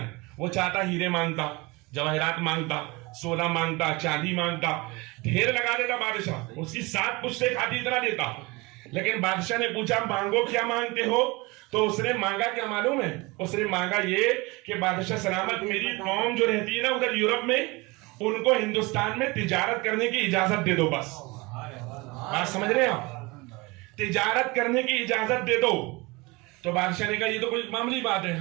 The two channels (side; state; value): left; quieter; 24.5 dB